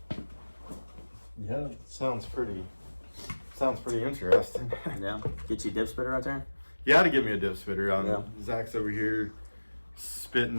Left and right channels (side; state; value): both; inverted; correlation -1.00